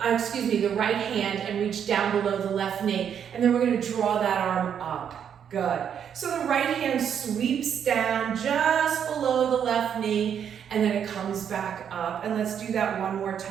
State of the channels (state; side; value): quieter; left; 8.3 dB